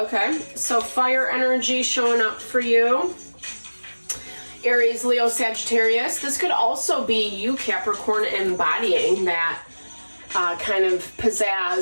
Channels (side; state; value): both; inverted; correlation -1.00